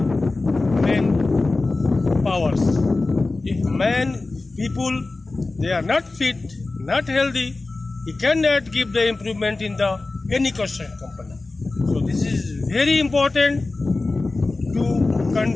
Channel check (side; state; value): right; quieter; 3.4 dB